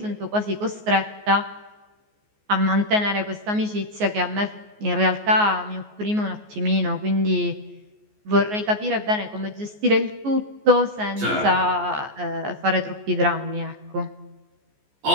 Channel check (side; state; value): left; late; 14 ms